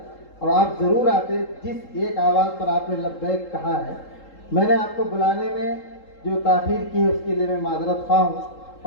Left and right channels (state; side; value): late; right; 3.8 ms